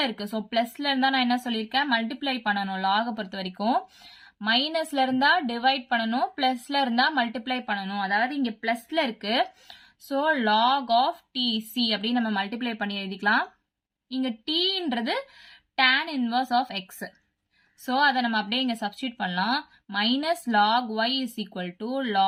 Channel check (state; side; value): identical; both; correlation 1.00